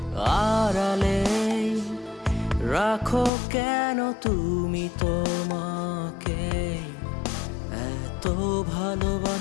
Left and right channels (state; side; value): drops out; right; at 3.3 s